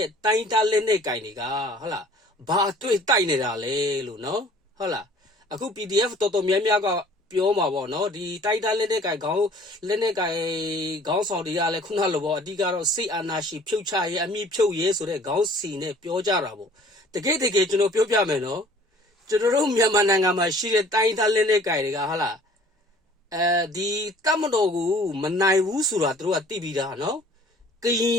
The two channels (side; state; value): both; normal; correlation 0.52